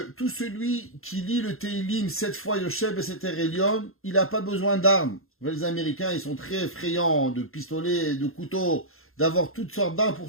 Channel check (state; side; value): late; right; 0.61 ms